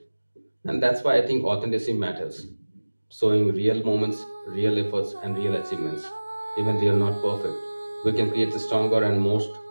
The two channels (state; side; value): inverted; both; correlation -1.00